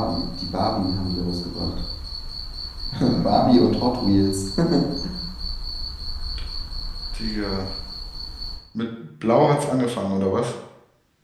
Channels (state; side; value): identical; both; correlation 1.00